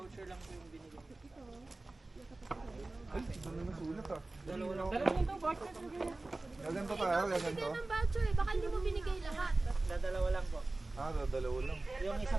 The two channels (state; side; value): quieter; left; 3.0 dB